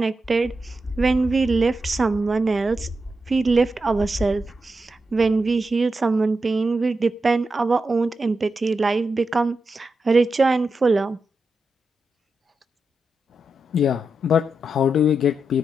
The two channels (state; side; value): normal; both; correlation 0.88